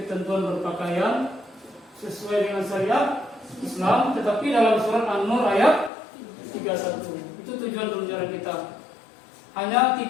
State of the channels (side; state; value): right; drops out; at 5.9 s